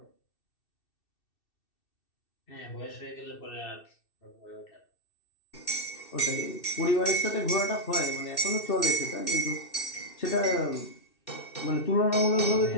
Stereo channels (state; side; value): late; right; 2.6 ms